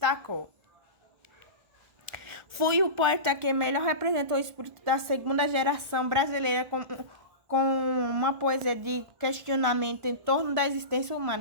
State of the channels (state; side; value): late; left; 1.4 ms